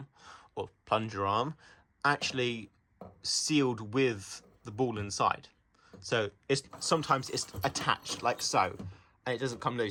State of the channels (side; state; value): both; identical; correlation 1.00